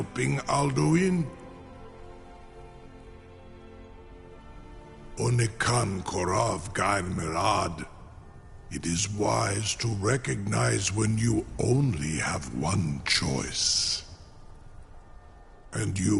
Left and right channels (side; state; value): both; identical; correlation 1.00